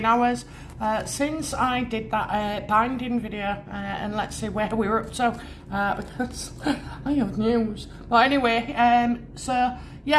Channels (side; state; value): both; identical; correlation 1.00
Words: hours since I did that binding video, and let's see where we're up to, because I have news. But anyway, so